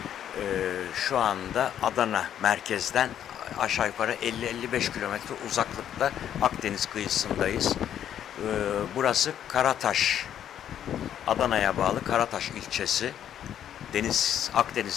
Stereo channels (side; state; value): right; quieter; 10.1 dB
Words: Şu anda Adana merkezden aşağı yukarı 50-55 kilometre uzaklıkta Akdeniz kıyısındayız. Burası Karataş, Adana'ya bağlı Karataş ilçesi.